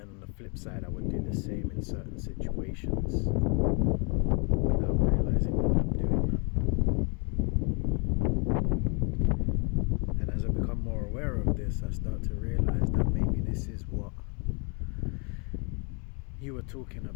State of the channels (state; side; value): quieter; right; 35.4 dB